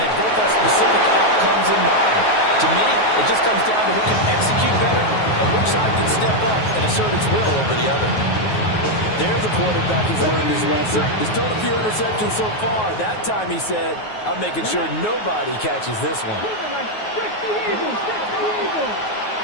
they both have specific outcomes in mind. To me, it just comes down to who can execute better and which side can step up and assert its will over the other. There's a quarterback who's learned his lesson. He's thrown a few interceptions so far. That time he said, I'm making sure nobody catches this one.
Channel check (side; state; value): right; late; 9.4 ms